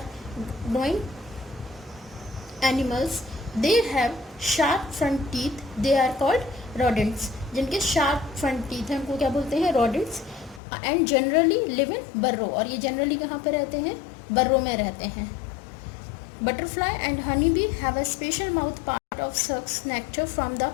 growing animals. They have sharp front teeth. They are called rodents. जिनके शार्प फ्रंट टीथ हैं उनको क्या बोलते हैं? Rodents. And generally live in burrow. और ये जनरली कहाँ पे रहते हैं? बर्रो में रहते हैं. Butterfly and honey bee have a special mouth part of sucks nectar from the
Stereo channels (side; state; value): right; drops out; at 10.6 s